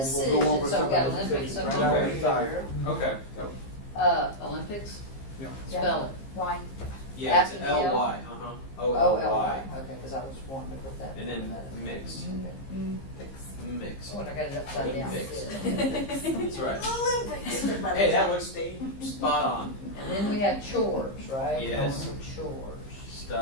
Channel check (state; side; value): late; right; 15 ms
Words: we'll go over decisions. So some we've got of those Olympics decisions. up Right now, there. we decide. Okay. Olympics? Yeah. Spell it. Why? Yeah, it's After the L? L-Y, O-L-Y. O-L-Y. Okay, because I was wanting to put that. And then mix. Mix. Oh, and I got it upside down. Olympics. That's right. Olympics. Hey, that looks spot on. And then we have chores, right? Yes. Going for chores.